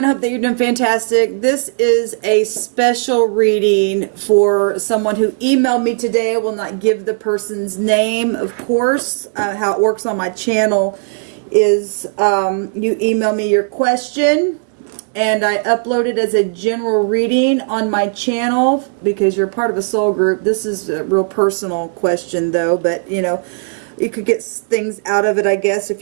hope that you're doing fantastic. This is a special reading for someone who emailed me today. I will not give the person's name, of course. How it works on my channel is you email me your question and I upload it as a general reading on my channel because you're part of a soul group. This is a real personal question though, but you know, you could get things out of it, I guess, if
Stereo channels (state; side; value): silent; left; digital silence